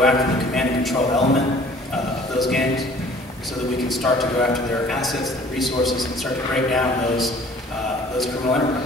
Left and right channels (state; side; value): normal; both; correlation 0.52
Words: after the command and control element of those gangs so that we can start to go after their assets, their resources, and start to break down those criminal